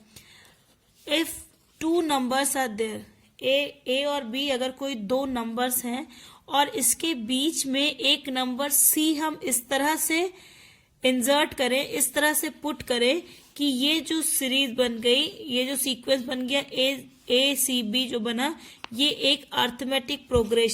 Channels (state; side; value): identical; both; correlation 1.00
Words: If two numbers are there, A और बी, अगर कोई दो नंबर्स हैं और इसके बीच में एक नंबर सी हम इस तरह से इंसर्ट करें, इस तरह से पुट करें कि ये जो सीरीज बन गई, ये जो सीक्वेंस बन गया ए सी बी जो बना, ये एक अर्थमेटिक